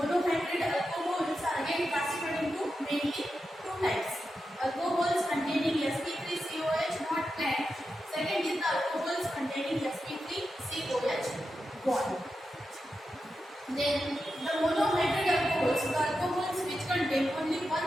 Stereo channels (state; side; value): normal; both; correlation 0.89